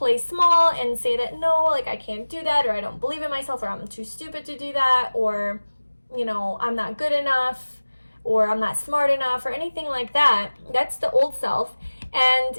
small and say that no, like I can't do that, or I don't believe in myself, or I'm too stupid to do that, or, you know, I'm not good enough, or I'm not smart enough or anything like that. That's the old self. And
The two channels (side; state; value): both; inverted; correlation -1.00